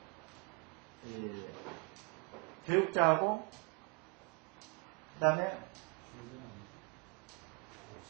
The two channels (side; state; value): left; quieter; 31.6 dB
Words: 교육자하고 그 다음에